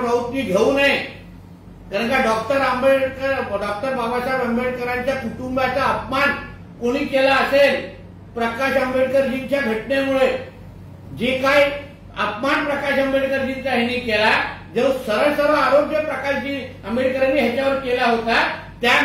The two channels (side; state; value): both; identical; correlation 1.00